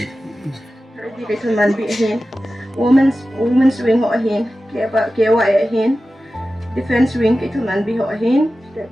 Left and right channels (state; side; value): normal; both; correlation 0.94